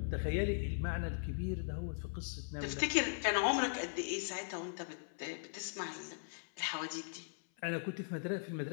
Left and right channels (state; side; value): silent; right; 52 dB below the other